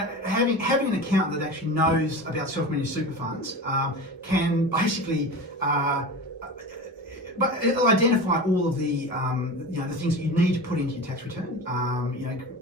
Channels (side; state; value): both; normal; correlation 0.30